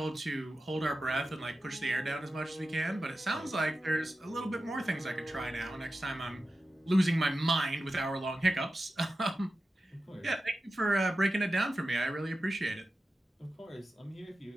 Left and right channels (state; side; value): normal; both; correlation 0.93